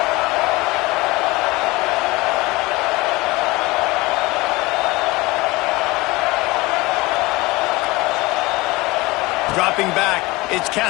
Dropping back, it's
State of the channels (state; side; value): quieter; right; 22.0 dB